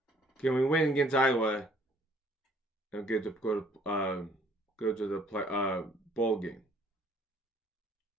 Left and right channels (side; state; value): both; normal; correlation 0.60